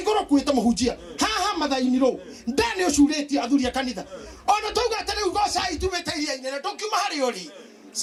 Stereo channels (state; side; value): identical; both; correlation 1.00